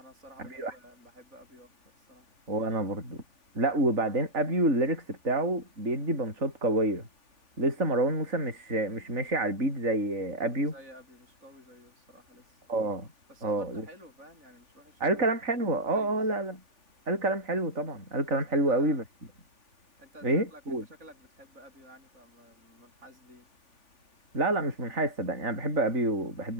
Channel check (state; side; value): late; left; 3.4 ms